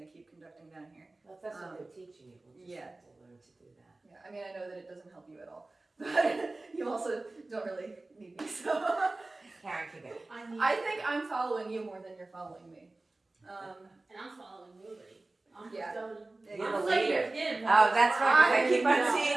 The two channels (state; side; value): quieter; left; 3.0 dB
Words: to keep conducting down here. Well, if that's what they're teaching you, we'll just have to learn to do that. Yeah, I mean, I know that it doesn't help you at all, but you also don't really need me, so. Karen can go. I think I'm following you more than you're following me. And I'm following nobody. I'm Yeah. You're I'm the leader. him. Oh, that's right, 'cause I keep on I